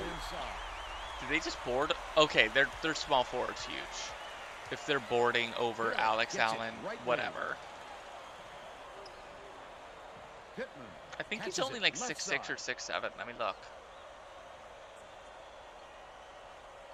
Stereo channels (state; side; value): identical; both; correlation 1.00